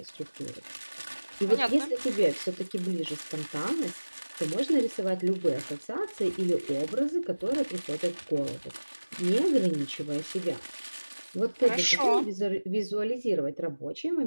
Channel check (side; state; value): both; inverted; correlation -1.00